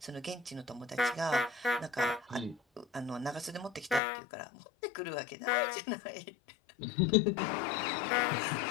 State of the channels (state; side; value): drops out; right; at 4.0 s